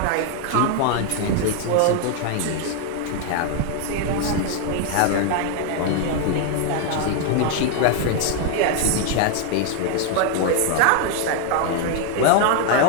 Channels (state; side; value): different; both; correlation 0.00